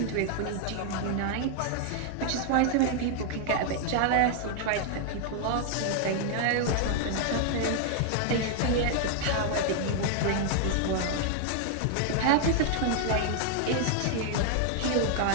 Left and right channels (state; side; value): different; both; correlation 0.00